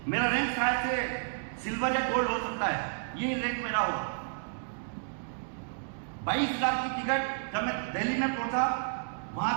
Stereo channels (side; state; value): left; silent; digital silence